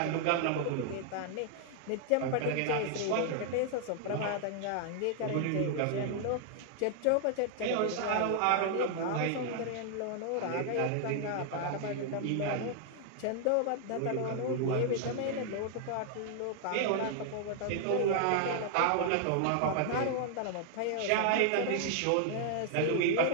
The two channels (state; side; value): different; both; correlation 0.00